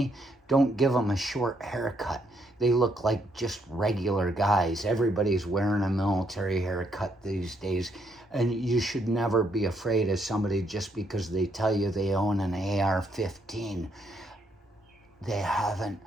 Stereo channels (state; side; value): normal; both; correlation 0.73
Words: Don't give them a short haircut. They look like just regular guys. Everybody's wearing a military haircut these days. And you should never be afraid of somebody just because they tell you they own an AR-15. They haven't